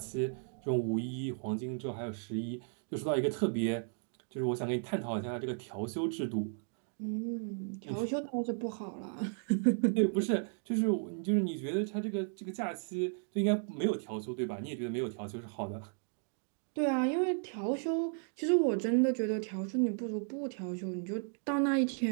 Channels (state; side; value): silent; left; 55 dB below the other